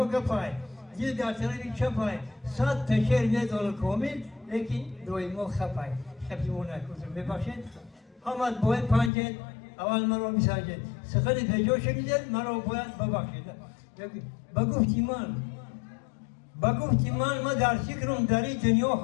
گفای دل در طرفی چپای صد تشیر میدال کامل لیکن دوی ما خپای خپی مون نکوزم ببخشید همت باید پنجید اول مرا میسنجید سخن پیجا شدید مرا باید ببخشید بگفتی من در فکرم در این دنیا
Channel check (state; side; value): drops out; right; at 9.1 s